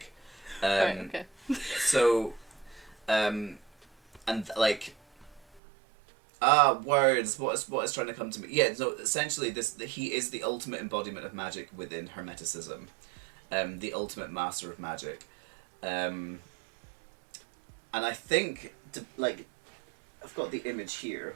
Right, okay. So, and like, words. What is trying to come to me? Yeah. So essentially, he is the ultimate embodiment of magic within Hermeticism, the ultimate master of magic, and I think I've got the image here.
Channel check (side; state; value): left; drops out; at 5.6 s